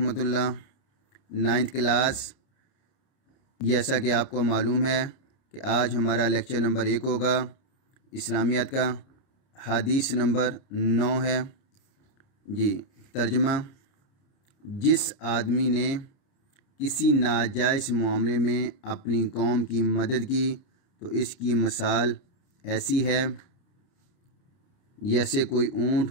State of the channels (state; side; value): late; right; 30 ms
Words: اللہ۔ 9th کلاس، جیسا کہ آپ کو معلوم ہے کہ آج ہمارا لیکچر نمبر 1 ہوگا اسلامیات کا۔ حدیث نمبر 9 ہے جی۔ ترجمہ: جس آدمی نے کسی ناجائز معاملے میں اپنی قوم کی مدد کی تو اس کی مثال ایسی ہے جیسے کوئی اونٹ